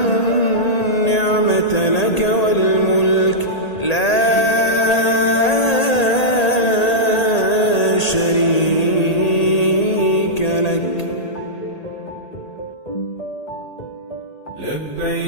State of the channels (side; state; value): right; late; 1.8 ms